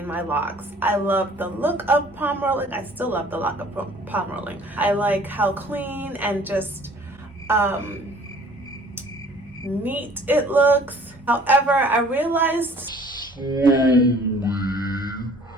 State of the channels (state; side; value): normal; both; correlation 0.53